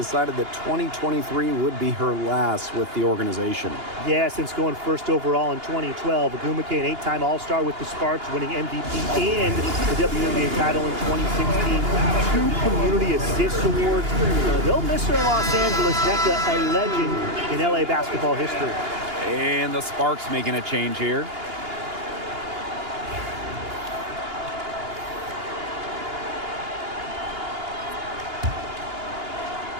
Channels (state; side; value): late; left; 2.8 ms